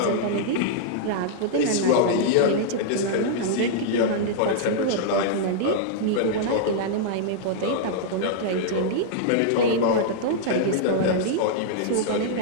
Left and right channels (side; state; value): both; different; correlation -0.01